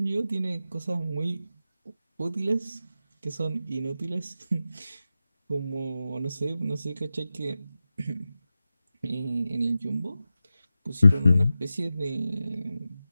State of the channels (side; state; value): both; inverted; correlation -0.92